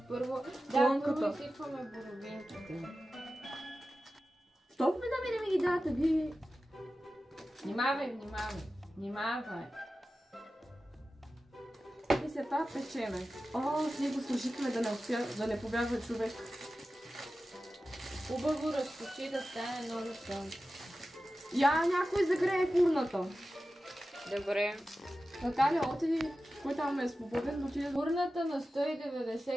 първо... Плънката. Първо изсипваме боровинките. Що ме да ми ги дадете, ви? Внимавай. И след това печеме. Ние го служихме да не побягва човек. Хубаво разточи да стане много тънко. Някой загрее фурната. Добре. Наталя, отиди, кой там е свободен, отиде до Фурната на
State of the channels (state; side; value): normal; both; correlation 0.94